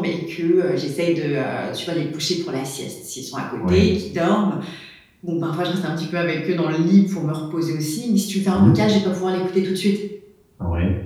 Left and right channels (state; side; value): identical; both; correlation 1.00